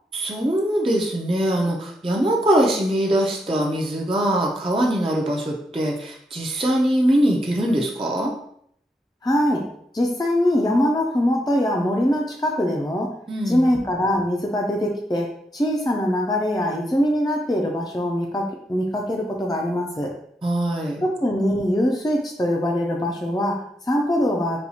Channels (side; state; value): both; normal; correlation 0.80